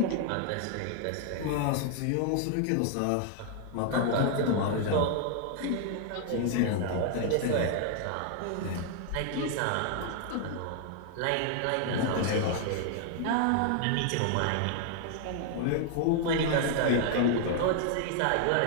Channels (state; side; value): different; both; correlation 0.00